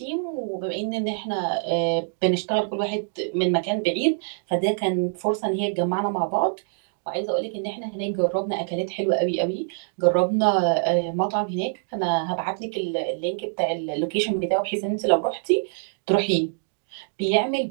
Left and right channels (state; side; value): silent; left; digital silence